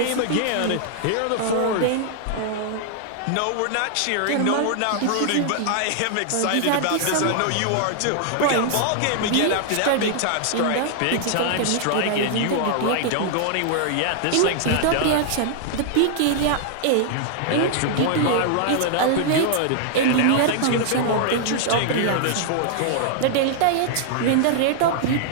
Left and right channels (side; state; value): both; different; correlation -0.01